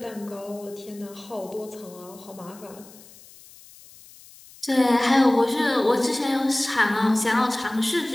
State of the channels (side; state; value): left; noise; hiss, 22 dB below the sound